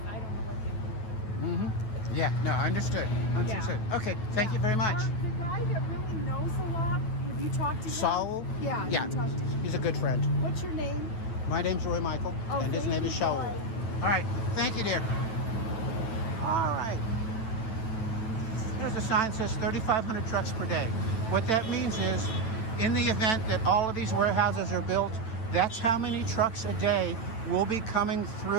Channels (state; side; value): late; right; 9.1 ms